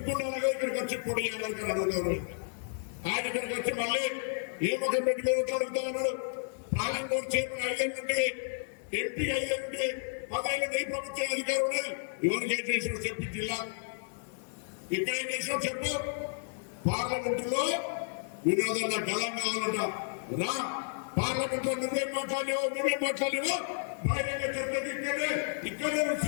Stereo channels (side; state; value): right; silent; 56 dB below the other